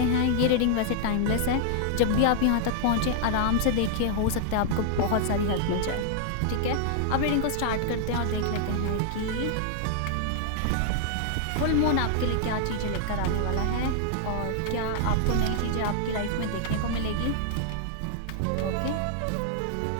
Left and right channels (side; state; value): both; different; correlation -0.01